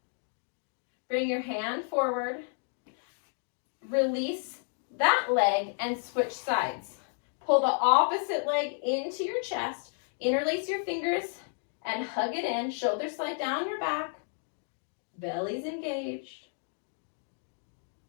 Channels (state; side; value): silent; right; 57 dB below the other